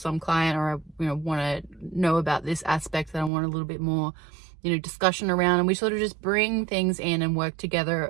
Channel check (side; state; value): left; drops out; at 3.3 s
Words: client, or I, you know, want to know about this aspect that I want a little bit more, you know, discussion around, and we sort of just bring things in and work